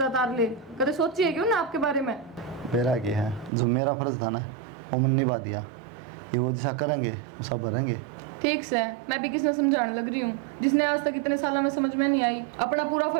उतार ले? कदे सोची है क्यों ना आपके बारे में? मेरा क्या है, जो मेरा फर्ज था ना वो मैंने निभा दिया, ये वो जैसा करेंगे वो सब भरेंगे। ठीक से मैं भी किसने समझाने लग रही हूँ, जिसने आज तक इतने सालों में समझ में नहीं आई, अपना पूरा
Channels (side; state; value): left; drops out; at 3.5 s